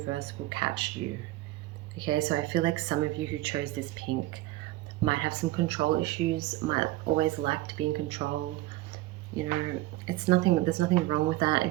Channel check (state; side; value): quieter; left; 17.3 dB